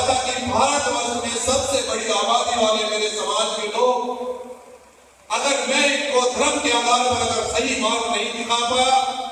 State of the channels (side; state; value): both; identical; correlation 1.00